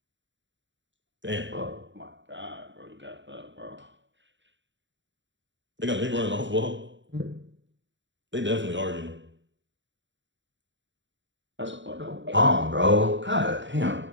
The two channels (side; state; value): left; late; 0.54 ms